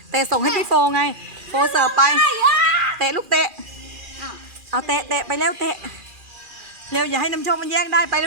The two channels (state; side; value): late; left; 2.4 ms